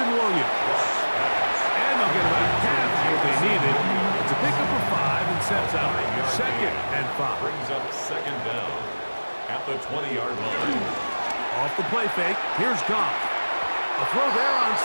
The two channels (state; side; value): inverted; both; correlation -1.00